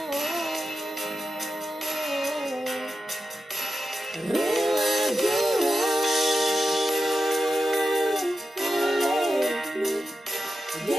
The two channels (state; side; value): normal; both; correlation 0.90